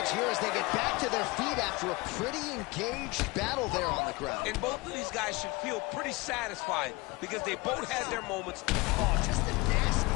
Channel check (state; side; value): quieter; right; 24.2 dB